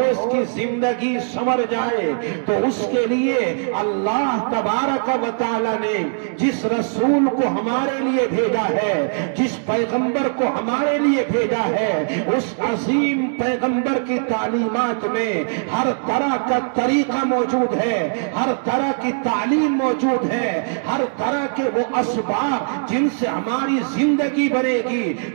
کی زندگی سنور جائے، تو اس کے لیے اللہ تبارک و تعالی نے جس رسول کو ہمارے لیے بھیجا ہے، جس پیغمبر کو ہمارے لیے بھیجا ہے، اس عظیم پیغمبر کی تعلیمات میں ہر طرح کا طریقہ موجود ہے، ہر طرح کی تعلیم موجود ہے، ہر طرح کے وہ اسباب جن سے ہماری زندگی بنے گی،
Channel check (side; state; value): left; silent; digital silence